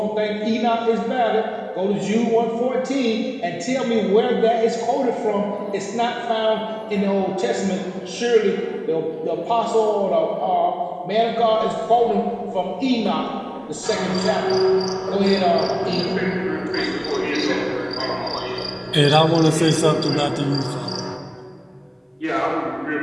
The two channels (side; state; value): both; identical; correlation 1.00